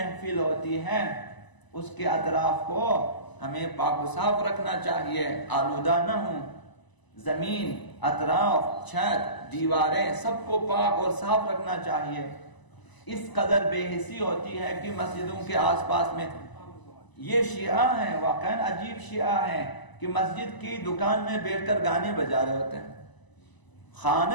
ہوتی ہے اس کے اطراف کو ہمیں پاک و صاف رکھنا چاہیے، آلودہ نہ ہوں. زمین، اطراف، چھت، دیواریں سب کو پاک اور صاف رکھنا چاہیے. اس قدر بے حسی ہوتی ہے کہ مسجدوں کے آس پاس میں یہ شیعہ ہیں، واقعاً عجیب شیعہ ہیں کہ مسجد کی دکان میں بیٹھ کر گانے بجا رہے ہوتے ہیں،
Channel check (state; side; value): late; right; 1.0 ms